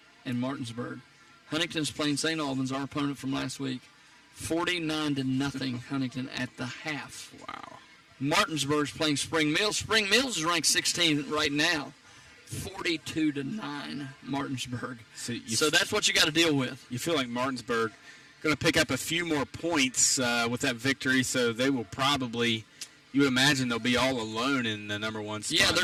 and Martinsburg. Huntington's playing St. Albans, our opponent from last week. 49-0 Huntington at the half. Wow. Martinsburg's playing Spring Mills. Spring Mills is ranked 16 right now. 42-9 Martinsburg. So that's what you got to deal with. You feel like Martinsburg going to pick up a few more points with that victory, so they will probably, you would imagine they'll be all alone in the number 1 spot. Yeah, they're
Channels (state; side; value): identical; both; correlation 1.00